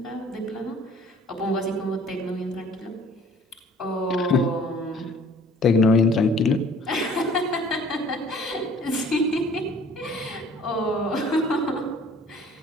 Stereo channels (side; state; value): both; normal; correlation 0.52